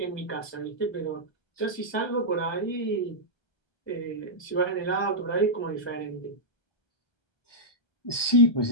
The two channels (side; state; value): right; late; 1.2 ms